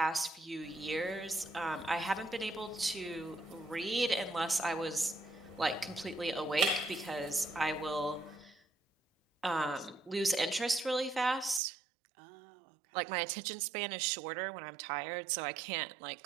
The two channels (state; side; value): drops out; left; at 11.6 s